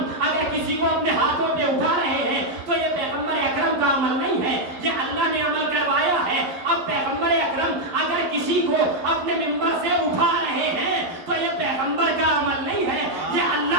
اگر کسی کو اپنے ہاتھوں پہ اٹھا رہے ہیں تو یہ پیغمبر اکرم کا عمل نہیں ہے، یہ اللہ نے عمل کروایا ہے۔ اب پیغمبر اکرم اگر کسی کو اپنے ممبر سے اٹھا رہے ہیں تو یہ پیغمبر کا عمل نہیں ہے، یہ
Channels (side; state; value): left; late; 11 ms